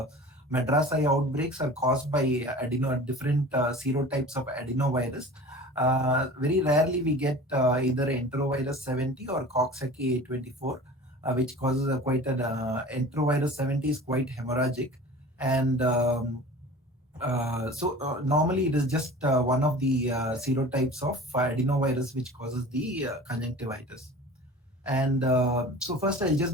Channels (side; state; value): both; normal; correlation 0.40